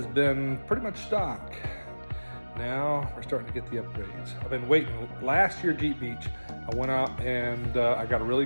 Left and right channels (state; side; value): inverted; both; correlation -1.00